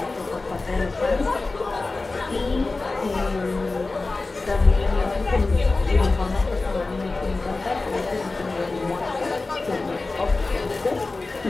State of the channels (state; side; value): quieter; right; 3.5 dB